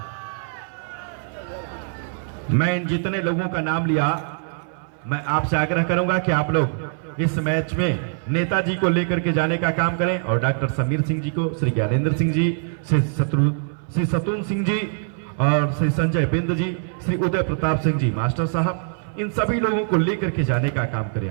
मैं इन जितने लोगों का नाम लिया, मैं आपसे आग्रह करूंगा कि आप लोग इस मैच में नेताजी को लेकर के जाने का काम करें और डॉक्टर समीर सिंह जी को, श्री ज्ञानेंद्र सिंह जी, श्री सतून सिंह जी और श्री संजय बिंद जी, श्री उदय प्रताप सिंह जी मास्टर साहब, इन सभी लोगों को लेकर के जाने का काम करें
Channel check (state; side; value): silent; left; 58 dB below the other